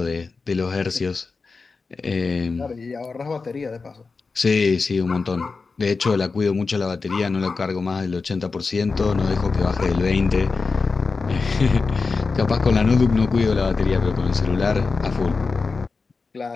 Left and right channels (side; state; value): right; quieter; 4.4 dB